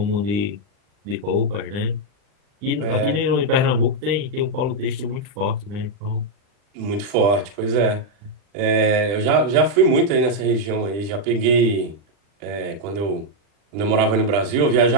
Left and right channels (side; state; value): left; late; 40 ms